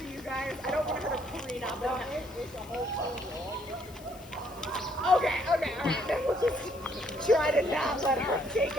you guys. I don't want her to clean up. Okay, alright. Then we'll just try to not let her take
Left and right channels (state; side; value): noise; left; hiss, 22 dB below the sound